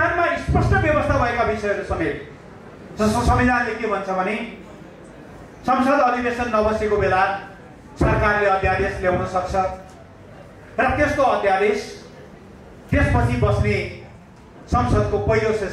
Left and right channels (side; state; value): both; identical; correlation 1.00